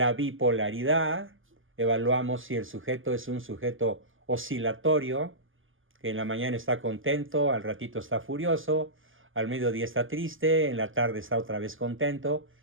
bipolaridad. Evaluamos si el sujeto es un sujeto oscilatorio, que en la mañana está contento, al ratito está furioso, al mediodía está triste, en la tarde está otra vez contento,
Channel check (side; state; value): left; late; 0.58 ms